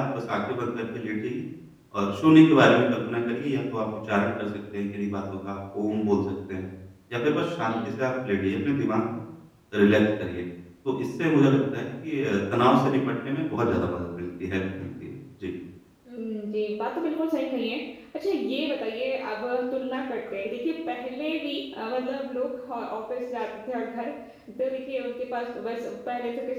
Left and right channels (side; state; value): both; identical; correlation 1.00